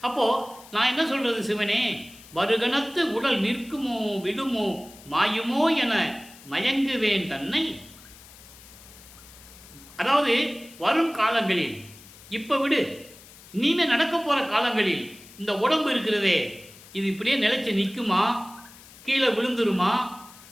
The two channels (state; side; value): noise; left; hiss, 21 dB below the sound